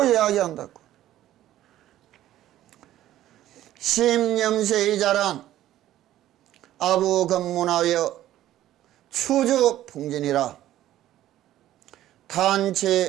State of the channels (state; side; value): quieter; left; 13.4 dB